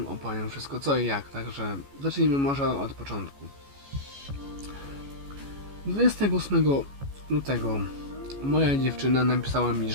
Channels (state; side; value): late; left; 14 ms